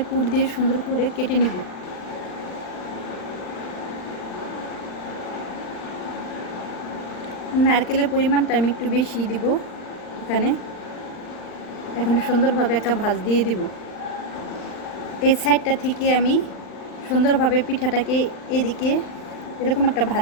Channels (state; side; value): late; right; 39 ms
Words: পুর দিয়ে সুন্দর করে কেটে নিব। নারকেলের পরিমাণটা আমি একটু বেশি দিব এখানে সুন্দরভাবে একটা ভাঁজ দিয়ে দিব। এই সাইডটা থেকে আমি সুন্দরভাবে পিঠাটাকে এদিকে এরকম একটা